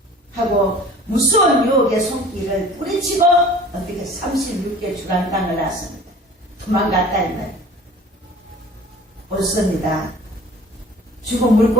하고 무서운 유혹의 손길을 뿌리치고 어떻게 36개 주간당을 났습니다. 도망갔다 이 말이에요. 옳습니다. 죽은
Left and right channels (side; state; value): both; normal; correlation 0.46